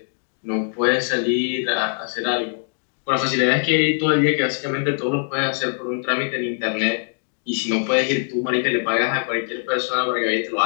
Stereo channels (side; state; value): right; silent; digital silence